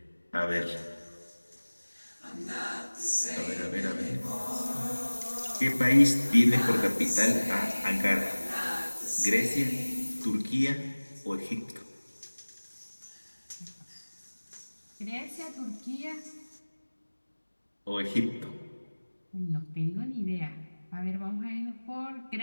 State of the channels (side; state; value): both; inverted; correlation -1.00